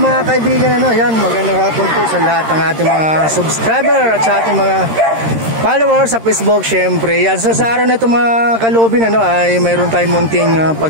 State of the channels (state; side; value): late; left; 13 ms